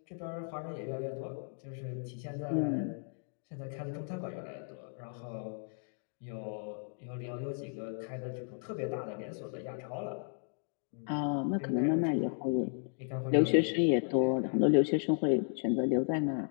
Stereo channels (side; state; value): right; silent; 55 dB below the other